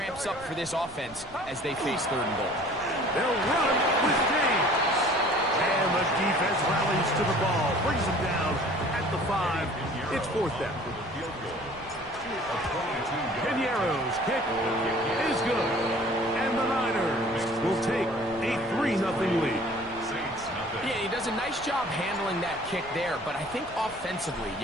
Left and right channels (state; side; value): noise; right; rumble, 21 dB below the sound